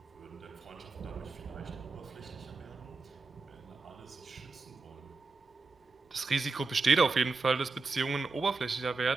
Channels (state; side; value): quieter; left; 4.1 dB